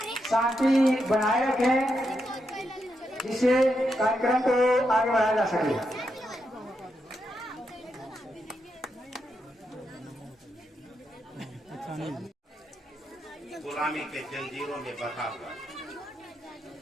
शांति बनाए रखें, जिससे कार्यक्रम को आगे बढ़ाया जा सके। गुलामी के जंजीरों में बंधा हुआ,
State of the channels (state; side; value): normal; both; correlation 0.83